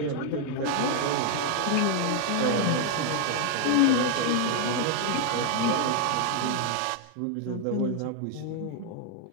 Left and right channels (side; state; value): both; different; correlation 0.00